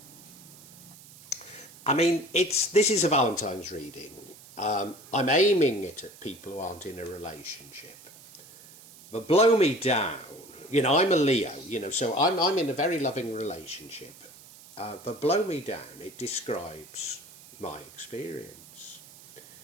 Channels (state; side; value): noise; right; hiss, 21 dB below the sound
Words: I mean, this is a Valentine's reading. I'm aiming it at people who aren't in a relationship. But blow me down. You know, I'm a Leo, you know, so I'm in a very loving relationship. But blow me down, it describes my experience.